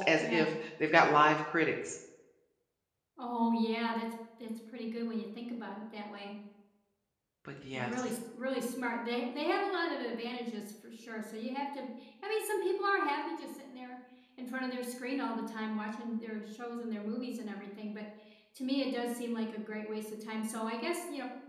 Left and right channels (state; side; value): identical; both; correlation 1.00